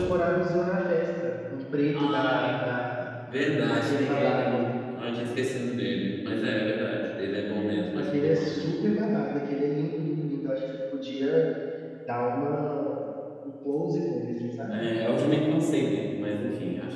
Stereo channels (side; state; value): both; identical; correlation 1.00